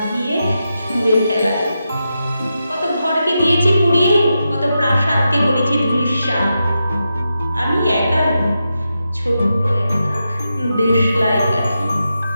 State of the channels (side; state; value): both; inverted; correlation -0.88